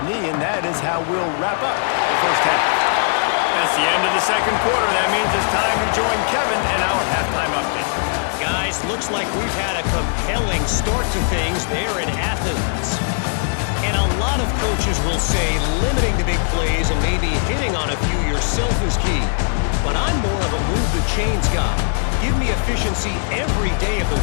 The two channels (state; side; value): silent; right; digital silence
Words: knee, and that is how we'll wrap up the 1st half. That's the end of the 2nd quarter. That means it's time to join Kevin and our halftime update. Guys, looks like we've had a compelling start to things there in Athens. And a lot of coaches will say limiting the big plays and maybe hitting on a few yourself is key. But I'm more of a move the chains guy. Give me efficiency every day of the